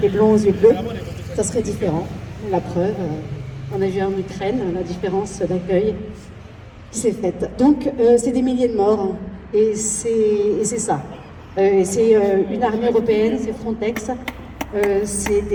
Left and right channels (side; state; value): both; identical; correlation 1.00